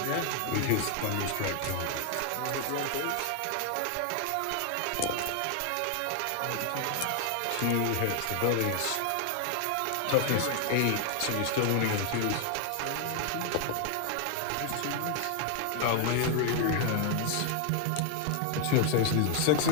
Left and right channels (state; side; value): different; both; correlation 0.00